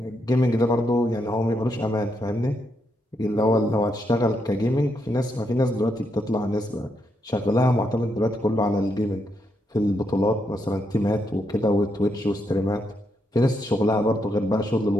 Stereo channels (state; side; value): normal; both; correlation 0.80